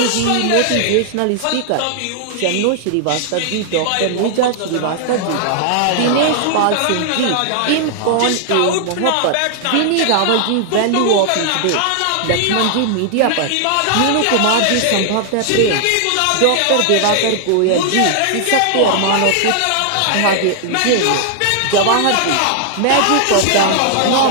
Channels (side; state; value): both; different; correlation 0.00